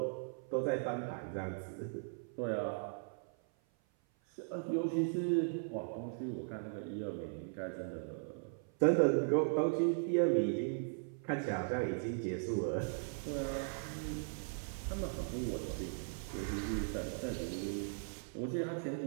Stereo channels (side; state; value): left; silent; 52 dB below the other